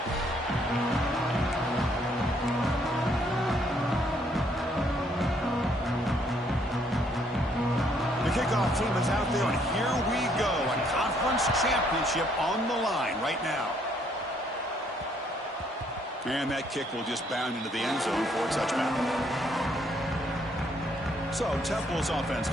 Kickoff team is out there, and here we go. A conference championship on the line right now. And that kick will just bound into the end zone for a touchback. So Temple's offense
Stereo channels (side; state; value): both; normal; correlation 0.68